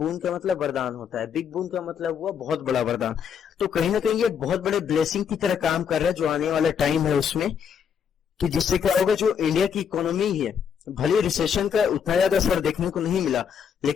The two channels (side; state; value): right; quieter; 7.5 dB